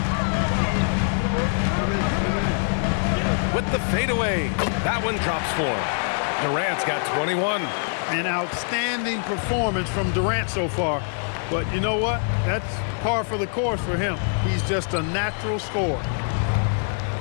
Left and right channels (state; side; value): silent; right; 57 dB below the other